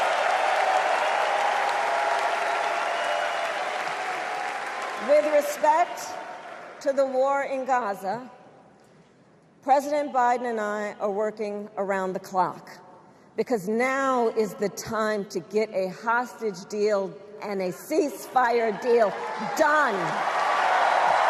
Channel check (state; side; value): identical; both; correlation 1.00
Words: With respect to the war in Gaza, President Biden and I are working around the clock, because now is the time to get a hostage deal and a ceasefire deal done.